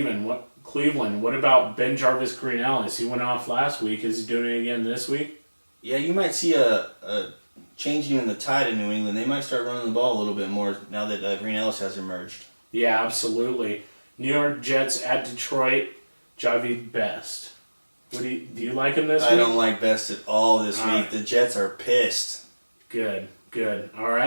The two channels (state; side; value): inverted; both; correlation -1.00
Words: What about Ben Jarvis Green-Ellis? He went off last week. Is he doing it again this week? Yeah, you might see a changing in the tide in New England. They might start running the ball a little bit more now that Green-Ellis has emerged. Yeah, absolutely. New York Jets at Detroit. Javi Best. Do you like him this week? I don't like Best at all this week. The Jets are pissed. Good. Good. All